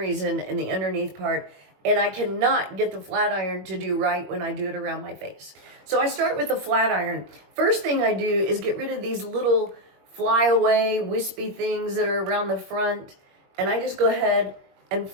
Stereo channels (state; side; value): late; left; 21 ms